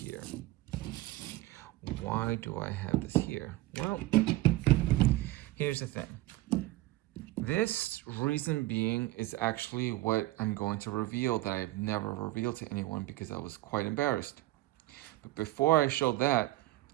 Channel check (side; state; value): left; quieter; 17.4 dB